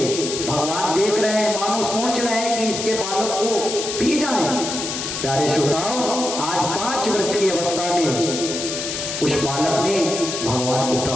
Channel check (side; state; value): left; noise; hiss, 5 dB below the sound